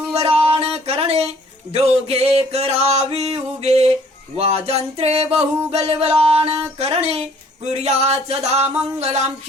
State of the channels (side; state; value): both; normal; correlation 0.58